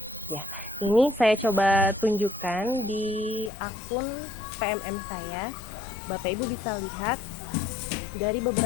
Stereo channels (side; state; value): right; drops out; at 3.5 s